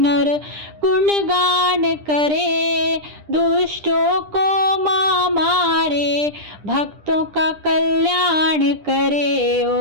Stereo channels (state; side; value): late; left; 10 ms